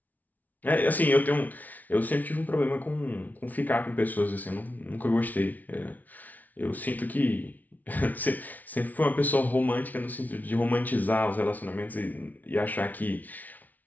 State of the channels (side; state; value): right; late; 0.077 ms